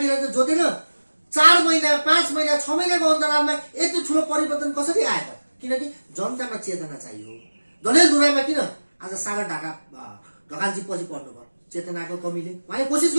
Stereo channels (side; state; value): both; inverted; correlation -1.00